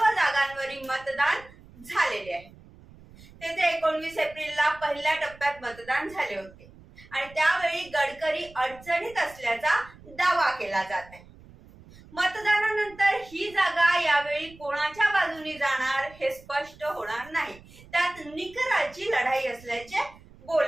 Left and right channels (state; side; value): noise; right; rumble, 22 dB below the sound